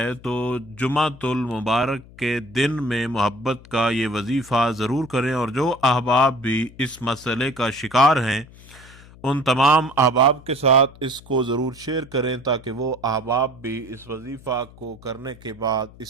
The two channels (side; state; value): left; noise; hum, 21 dB below the sound